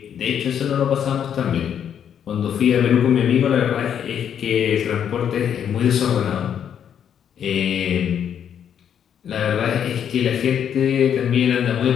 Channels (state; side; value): quieter; right; 8.8 dB